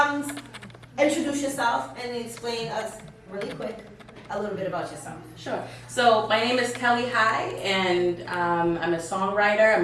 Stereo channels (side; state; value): both; identical; correlation 1.00